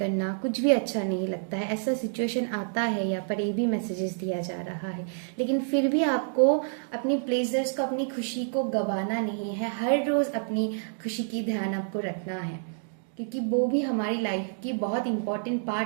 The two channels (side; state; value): left; silent; digital silence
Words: कुछ भी अच्छा नहीं लगता है, ऐसा सिचुएशन आता है। यहाँ पर ये भी मैसेजेस दिया जा रहा है, लेकिन फिर भी आपको अपनी प्लेजर्स को, अपनी खुशी को गंवाना नहीं है। हर रोज अपनी खुशी की ध्यान आपको रखना है, क्योंकि वो भी हमारी लाइफ की बहुत इंपॉर्टेंट